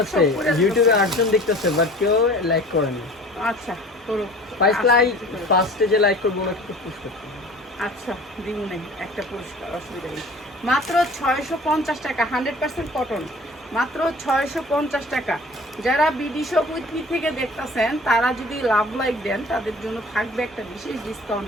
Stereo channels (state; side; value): normal; both; correlation 0.44